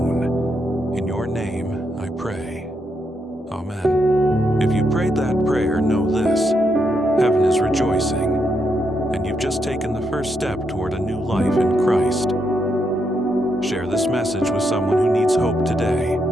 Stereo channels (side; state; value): both; normal; correlation 0.80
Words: In your name, I pray. Amen. If you prayed that prayer, know this: heaven is rejoicing, and you've just taken the first step toward a new life in Christ. Share this message with someone who needs hope today.